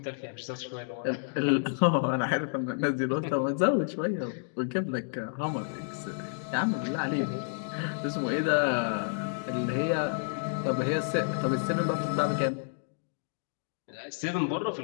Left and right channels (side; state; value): right; silent; digital silence